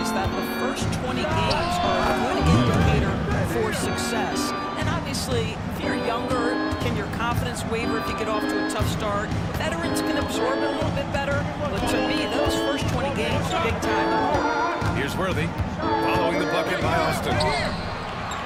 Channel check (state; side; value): identical; both; correlation 1.00